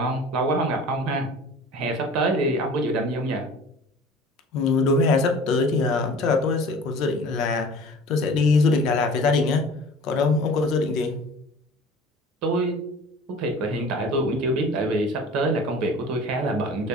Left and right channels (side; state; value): both; normal; correlation 0.44